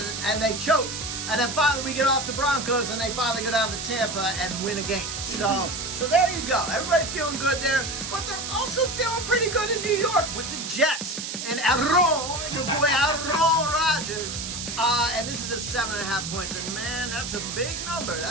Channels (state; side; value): noise; right; hiss, 6 dB below the sound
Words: and they choked. And then finally we get off the Broncos, and they finally go down to Tampa and win a game. So there you go. Everybody feeling good there, but they're also feeling pretty good in New York with the Jets and your boy Aaron Rodgers. And this is a 7.5 points, and man, that's a big number.